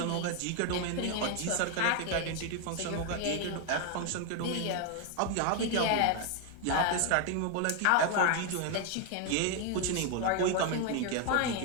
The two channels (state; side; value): different; both; correlation 0.01